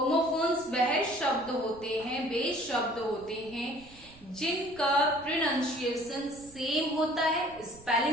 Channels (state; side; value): noise; right; rumble, 23 dB below the sound